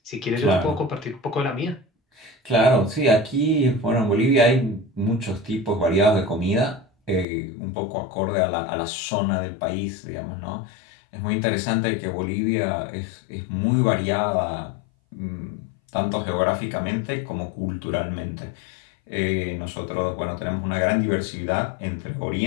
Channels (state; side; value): drops out; right; at 7.2 s